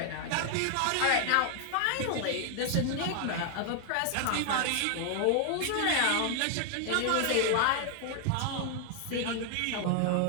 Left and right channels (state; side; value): different; both; correlation 0.00